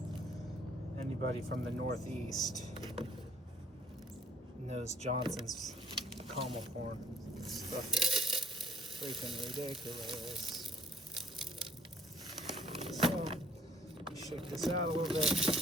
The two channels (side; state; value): both; normal; correlation 0.65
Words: Anybody from the Northeast knows Johnson's Camelthorn. Stuff is freaking ridiculous. So shake this out a little bit.